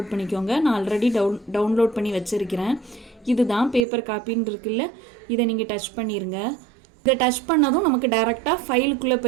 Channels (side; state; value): left; drops out; at 3.8 s